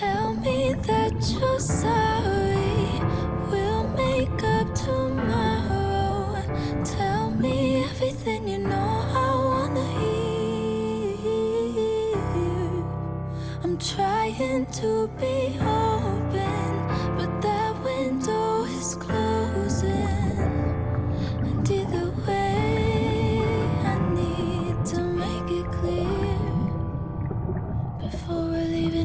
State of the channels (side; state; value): both; identical; correlation 1.00